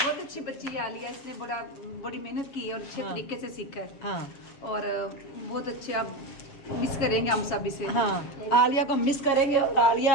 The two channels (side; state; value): right; late; 7.2 ms